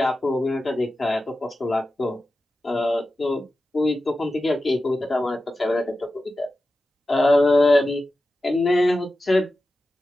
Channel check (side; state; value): both; normal; correlation 0.93